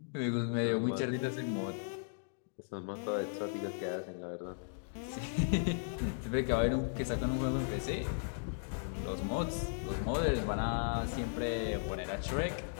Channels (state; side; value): silent; right; digital silence